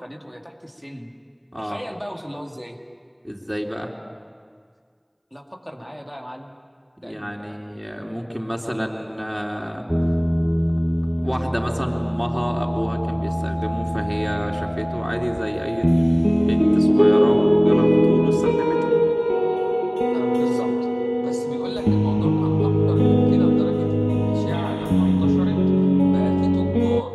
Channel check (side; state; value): both; identical; correlation 1.00